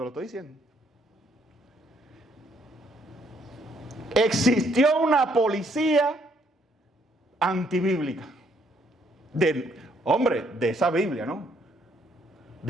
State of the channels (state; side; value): normal; both; correlation 0.69